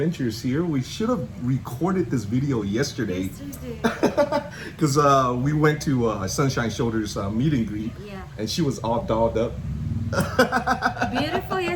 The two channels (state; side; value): identical; both; correlation 1.00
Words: here. We should have recorded this video yesterday. Because we went to Sunshine Shoulders meet and greet. Yeah. And she was all dolled up. Beautiful